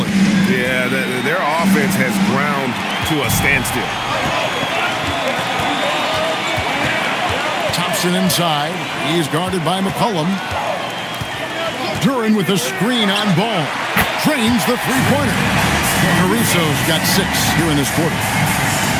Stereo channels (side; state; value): both; identical; correlation 1.00